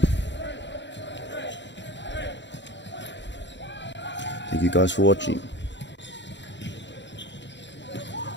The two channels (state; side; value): late; right; 0.52 ms